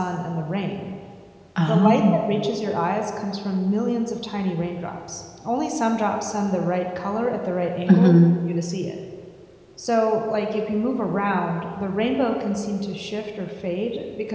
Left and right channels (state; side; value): identical; both; correlation 1.00